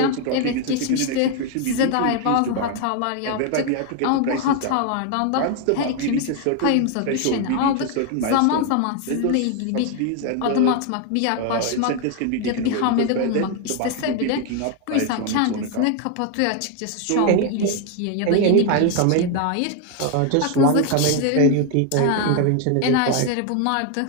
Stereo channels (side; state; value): both; different; correlation 0.01